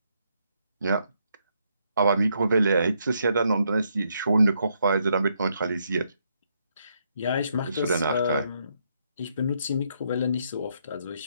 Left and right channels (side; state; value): both; inverted; correlation -0.76